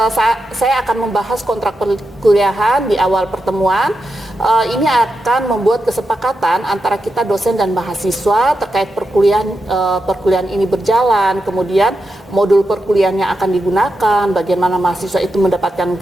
saya akan membahas kontrak perkuliahan di awal pertemuan. Ini akan membuat kesepakatan antara kita dosen dan mahasiswa terkait perkuliahan ini berjalan, kemudian modul perkuliahan yang akan digunakan, bagaimana mahasiswa itu mendapatkan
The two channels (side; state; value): both; normal; correlation 0.87